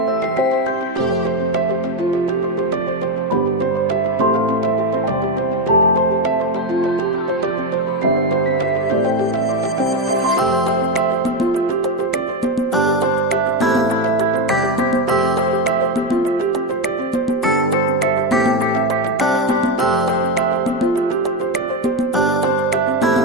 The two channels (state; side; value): normal; both; correlation 0.10